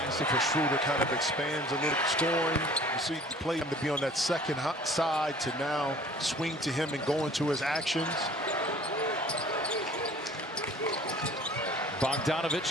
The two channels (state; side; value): normal; both; correlation 0.49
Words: for Schroeder kind of expands a little, scoring. You see the play to be on that second side to now swing to him and go into his actions.